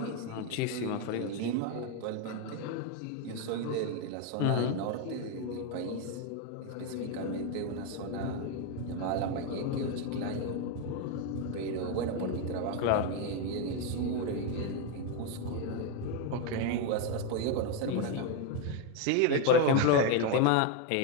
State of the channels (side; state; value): both; different; correlation 0.02